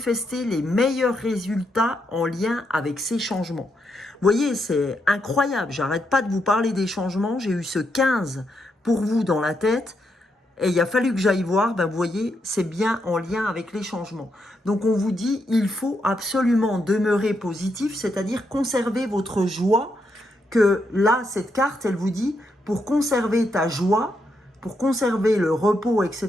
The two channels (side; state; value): both; normal; correlation 0.80